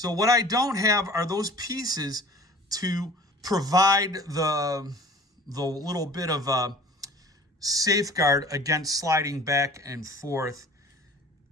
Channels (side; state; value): both; normal; correlation 0.45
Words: what I don't have are those pieces to provide the little bit of a safeguard against sliding back and forth.